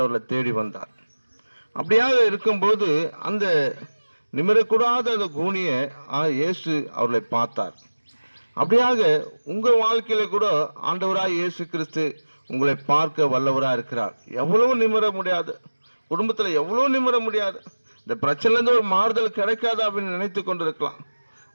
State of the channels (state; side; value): inverted; both; correlation -1.00